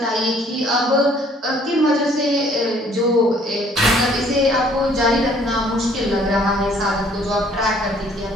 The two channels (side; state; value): both; normal; correlation 0.59